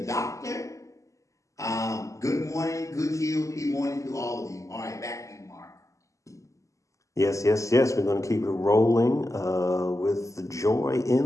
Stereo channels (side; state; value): right; late; 0.16 ms